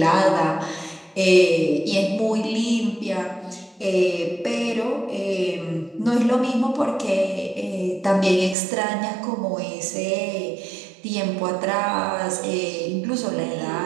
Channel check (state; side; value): drops out; left; at 8.6 s